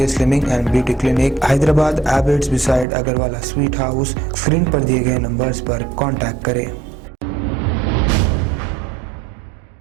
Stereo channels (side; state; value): left; drops out; at 2.9 s